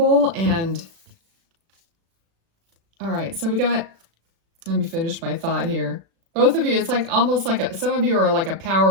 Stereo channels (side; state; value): left; late; 36 ms